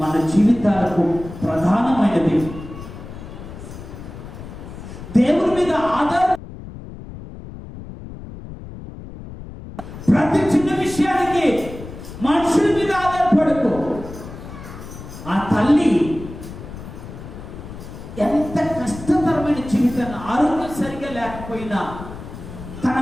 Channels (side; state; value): left; noise; rumble, 13 dB below the sound